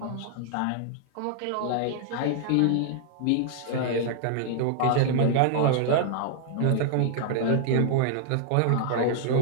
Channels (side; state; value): both; different; correlation -0.01